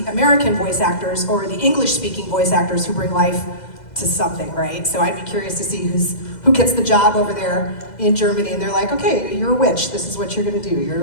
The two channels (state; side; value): late; right; 2.0 ms